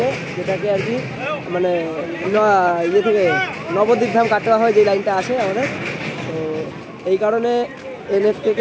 যেটাকে আর কি মানে ইয়ে থেকে নবদ্বীপ ধাম কাটোয়া হয় যে লাইনটা আসে আমাদের। তো এই কারণে এনএফ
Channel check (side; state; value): both; identical; correlation 1.00